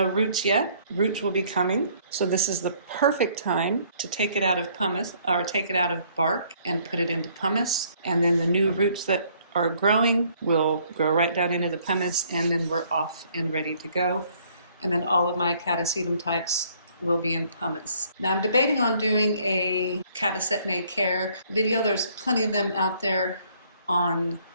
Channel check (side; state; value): both; inverted; correlation -0.63